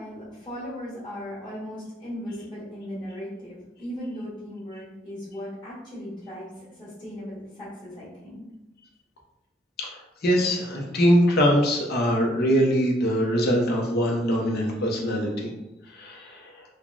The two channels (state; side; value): normal; both; correlation 0.67